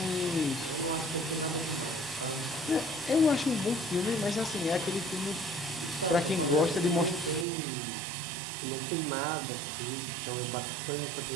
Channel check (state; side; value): drops out; left; at 7.5 s